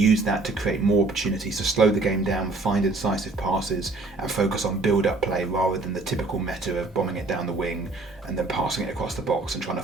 that to create more opportunities to slow the game down, find incisive passes, and focus on build-up play rather than the typical meta of bombing it down the wing and then passing it across the box and trying to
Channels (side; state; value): left; quieter; 3.4 dB